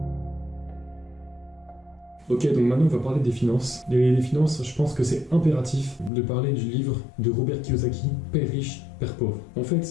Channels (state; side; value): drops out; right; at 6.1 s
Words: Ok, donc maintenant on va parler des finances. Les finances, je pense que c'est impératif de parler du livre de Robert Kiyosaki, Père riche, Père pauvre. En fait,